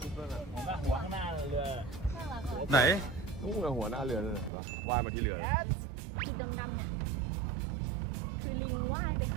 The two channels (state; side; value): drops out; left; at 4.5 s